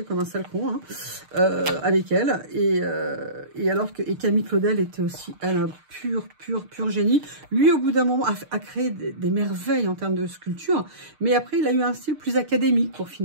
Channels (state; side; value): late; left; 6.6 ms